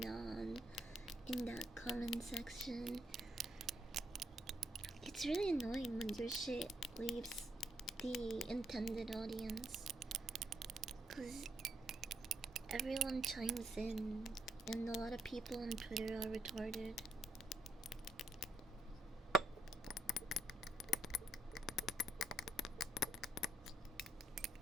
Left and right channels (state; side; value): normal; both; correlation 0.74